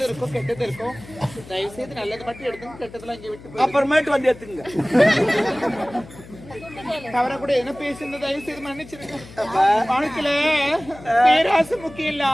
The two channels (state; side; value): noise; left; hum, 18 dB below the sound